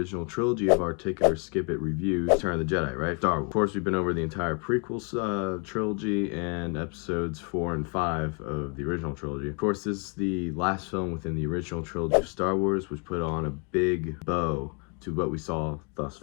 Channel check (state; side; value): quieter; right; 36.6 dB